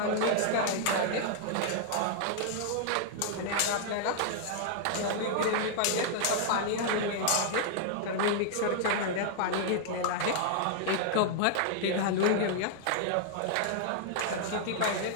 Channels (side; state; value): both; different; correlation -0.01